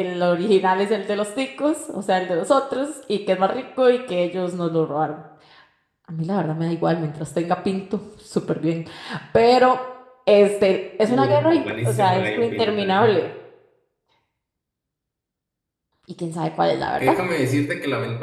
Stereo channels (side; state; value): both; identical; correlation 1.00